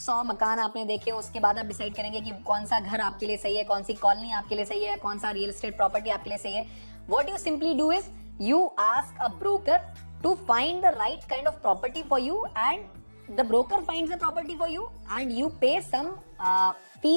मकान आपने देखे, उसके बाद आप डिसाइड करेंगे कि कौन सा घर आपके लिए सही है, कौन सी कॉलोनी आपके लिए सही है, कौन सा रियल एस्टेट प्रॉपर्टी आपके लिए सही है। What you simply do is you ask a broker to find the right kind of property for you and the broker finds the property for you and you pay some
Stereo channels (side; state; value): both; inverted; correlation -1.00